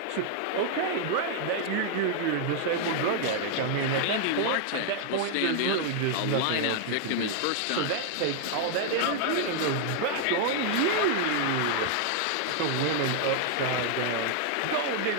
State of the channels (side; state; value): both; different; correlation 0.00